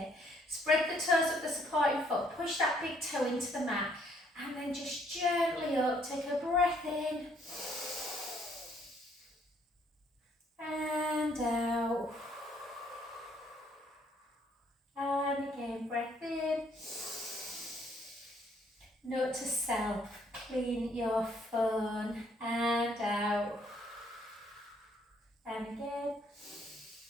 Spread the toes of the supporting foot, push that big toe into the mat, and then just gently up, take a breath in, and out. And again, breath in. Note to self, clean your phone, and out. And again.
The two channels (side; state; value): both; normal; correlation 0.66